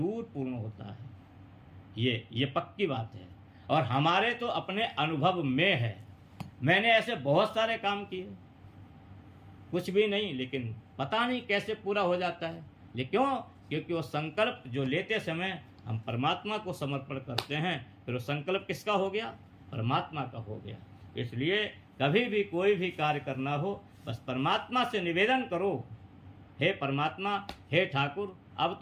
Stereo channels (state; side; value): identical; both; correlation 1.00